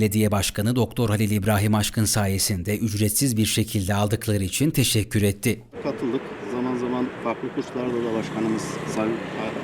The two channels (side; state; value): both; identical; correlation 1.00